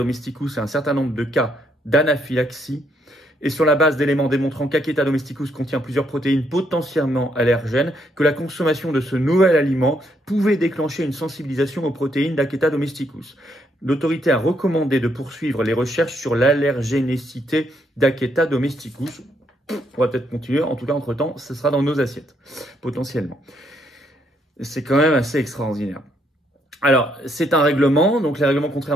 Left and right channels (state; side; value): normal; both; correlation 0.73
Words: et un certain nombre de cas d'anaphylaxie, et sur la base d'éléments démontrant qu'Aketa domesticus contient plusieurs protéines potentiellement allergènes, que la consommation de ce nouvel aliment pouvait déclencher une sensibilisation aux protéines d'Aketa domesticus. L'autorité a recommandé de poursuivre les recherches sur l'allergénicité d'Aketa domesticus. On va peut-être continuer, en tout cas entre-temps, ce sera dans nos assiettes, potentiellement. C'est quand même assez extraordinaire. Alors, c'est un règlement, donc les règlements,